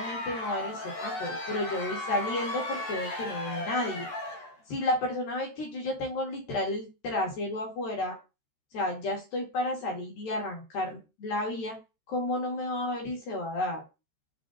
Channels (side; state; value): right; late; 13 ms